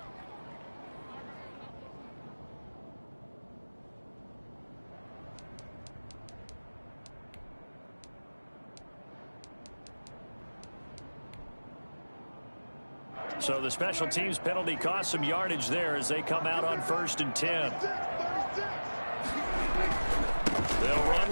So the special teams penalty cost some yardage there as they come out on 1st and 10. They'll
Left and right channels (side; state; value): both; inverted; correlation -1.00